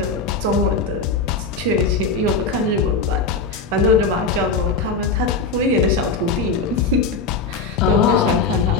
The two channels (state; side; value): quieter; right; 4.2 dB